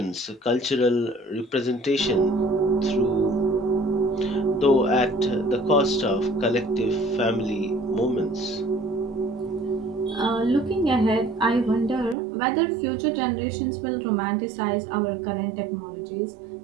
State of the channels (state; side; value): drops out; left; at 12.2 s